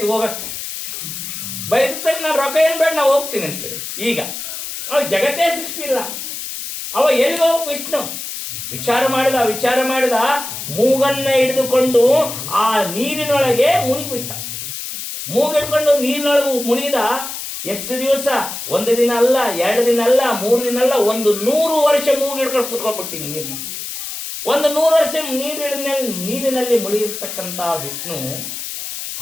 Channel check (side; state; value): left; noise; hiss, 7 dB below the sound